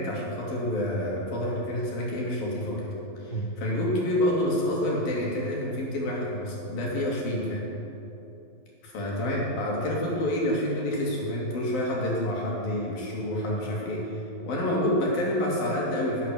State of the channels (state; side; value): late; right; 12 ms